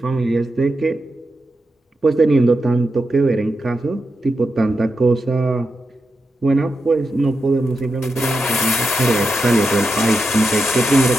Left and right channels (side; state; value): both; normal; correlation 0.87